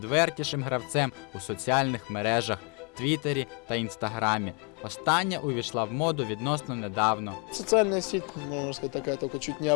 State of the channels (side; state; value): right; quieter; 35.1 dB